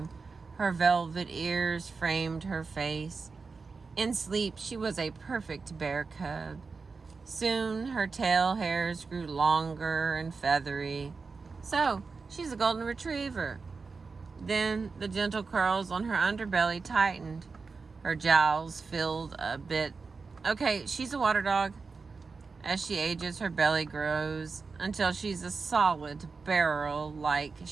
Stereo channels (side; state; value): left; quieter; 4.6 dB